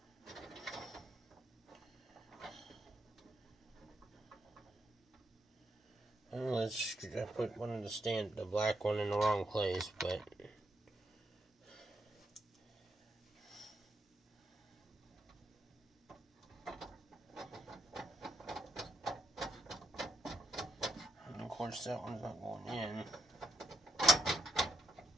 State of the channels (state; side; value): normal; both; correlation 0.78